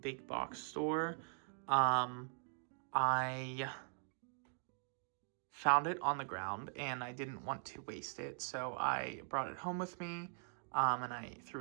big box store. I found it on the ground and I didn't want to waste it, so I brought it home with me, and I threw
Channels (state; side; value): silent; left; digital silence